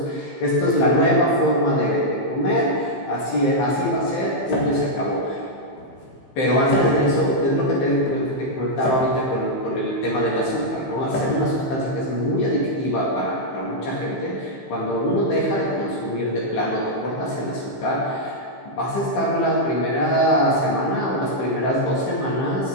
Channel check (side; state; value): right; late; 15 ms